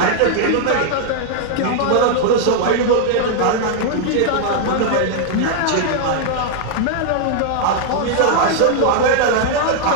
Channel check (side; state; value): both; different; correlation -0.01